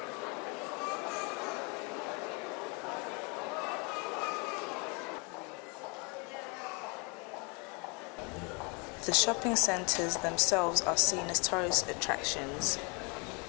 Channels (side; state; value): right; quieter; 32.0 dB